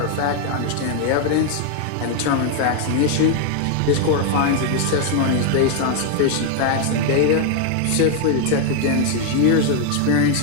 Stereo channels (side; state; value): both; different; correlation 0.00